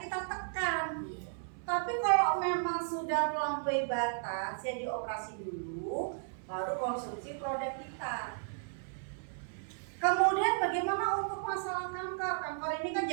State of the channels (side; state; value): left; silent; 55 dB below the other